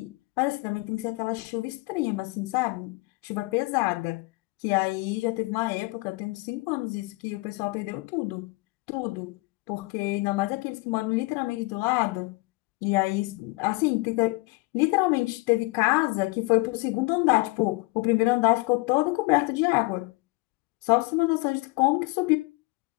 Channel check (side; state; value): right; quieter; 24.7 dB